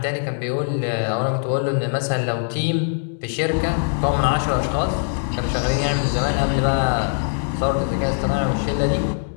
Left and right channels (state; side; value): silent; right; digital silence